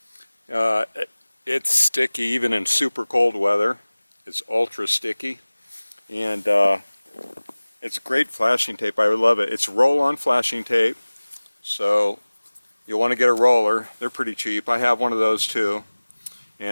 It's sticky even in super cold weather. It's ultra sticky, and it's great flashing tape. I love it. It's roll-on flashing tape, so you'll want to get a roller. They're pretty cheap. I have one of those too,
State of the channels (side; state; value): both; inverted; correlation -1.00